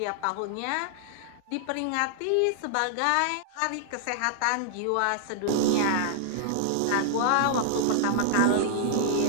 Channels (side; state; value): both; different; correlation -0.01